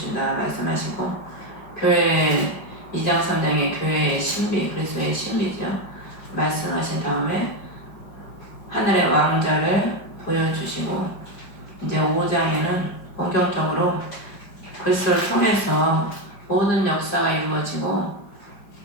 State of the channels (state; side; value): late; right; 5.1 ms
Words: 말씀하시고, 교회 2장 3장에 교회의 신비, 그리스도의 신비죠, 말씀하신 다음에 하늘의 왕자를 보여주시고, 이제 5장에는 본격적으로 그리스도를 통해서 모든 역사가 이루어지고